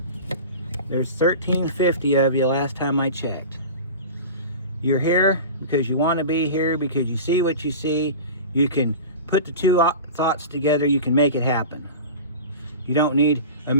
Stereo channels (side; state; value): both; inverted; correlation -0.33